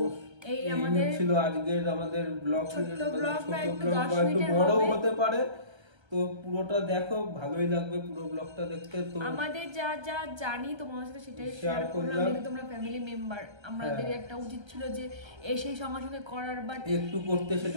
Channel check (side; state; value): left; late; 1.3 ms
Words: এই আমাদের ছিল আজকের আমাদের ব্লগ, ছোট ব্লগ একটু বড় হতে পারে, তো পুরোটা দেখো, ভালোই লাগবে পুরো ব্লগটা দেখতে। তো আমাদের যা যা জানি তোমাদের সাথে সেটাই শেয়ার করলাম, তোমরা ফ্যামিলি মেম্বার, আমাদের একটা উচিত ছিল যে এসে সঙ্গে সঙ্গে করার, বাট একটু করতে